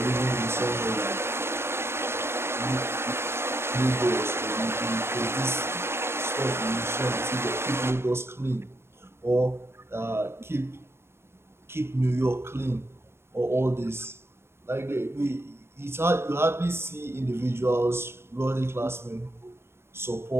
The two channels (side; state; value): left; late; 0.12 ms